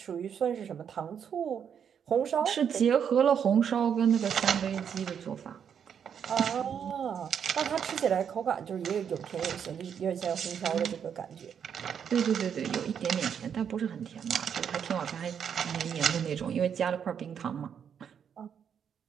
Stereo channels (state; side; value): quieter; left; 7.9 dB